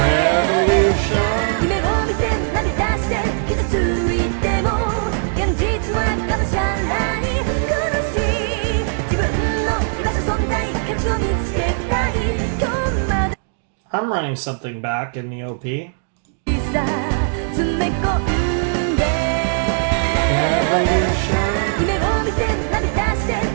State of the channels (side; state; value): left; silent; digital silence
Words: I'm running something back in the OP.